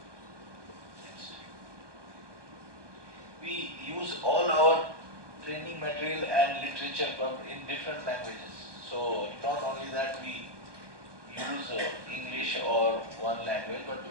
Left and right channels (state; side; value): late; left; 1.2 ms